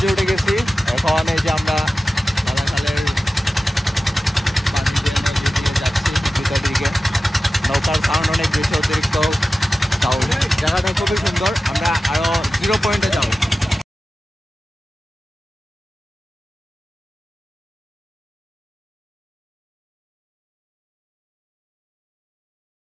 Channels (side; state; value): both; normal; correlation 0.94